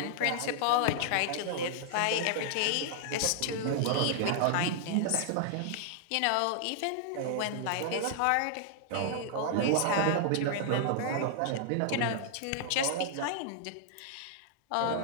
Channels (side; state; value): both; different; correlation -0.01